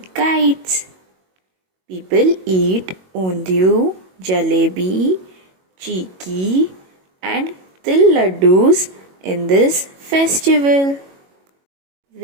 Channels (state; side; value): late; left; 22 ms